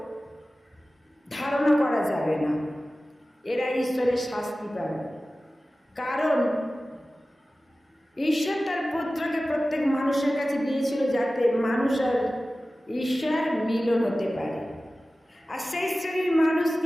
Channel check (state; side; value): normal; both; correlation 0.96